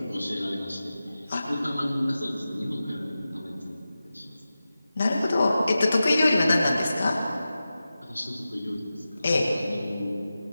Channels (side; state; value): both; inverted; correlation -0.93